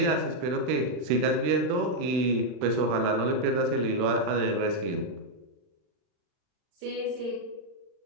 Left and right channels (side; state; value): left; late; 40 ms